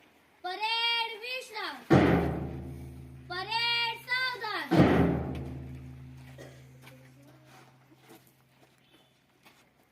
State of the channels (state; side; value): identical; both; correlation 1.00